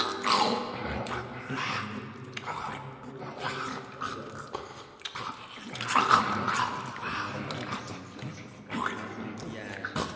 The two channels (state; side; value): identical; both; correlation 1.00